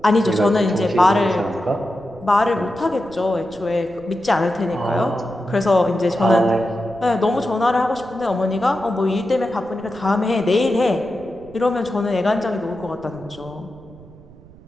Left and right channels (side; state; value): right; noise; rumble, 22 dB below the sound